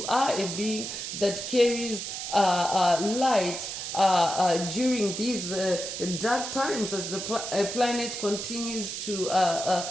are a being that carries light during these dark times, as the planet continues to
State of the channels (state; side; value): noise; right; hiss, 6 dB below the sound